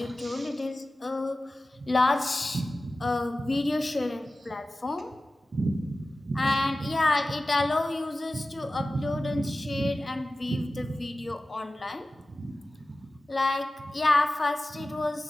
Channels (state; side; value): normal; both; correlation 0.95